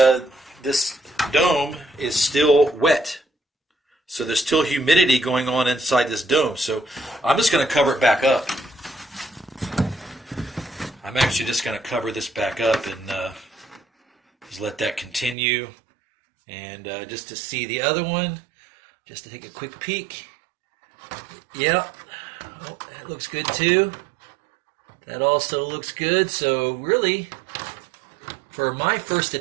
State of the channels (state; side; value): drops out; left; at 15.4 s